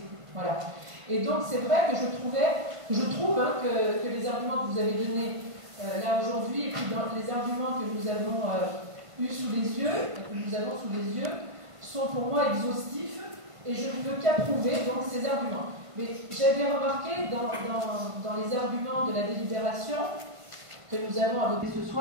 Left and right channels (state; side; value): late; left; 1.5 ms